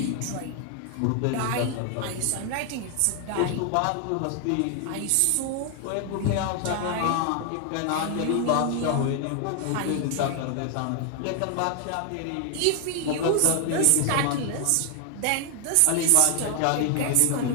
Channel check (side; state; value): both; different; correlation 0.00